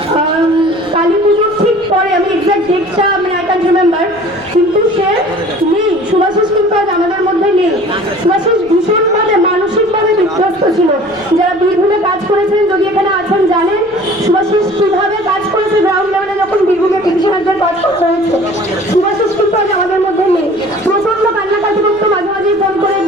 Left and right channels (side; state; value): left; noise; rumble, 27 dB below the sound